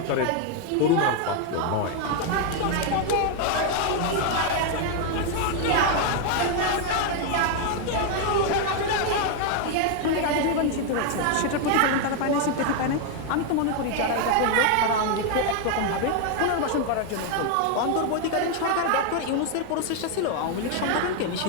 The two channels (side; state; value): both; different; correlation 0.01